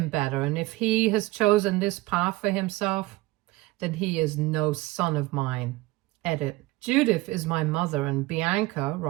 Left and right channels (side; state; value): left; quieter; 19.7 dB